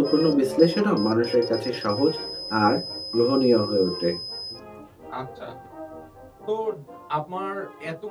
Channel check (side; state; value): both; identical; correlation 1.00